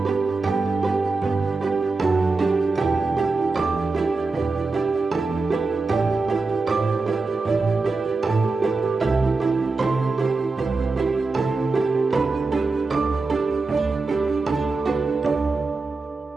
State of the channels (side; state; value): left; quieter; 3.8 dB